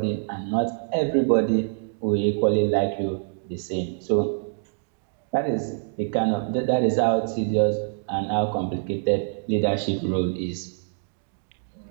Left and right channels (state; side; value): silent; left; digital silence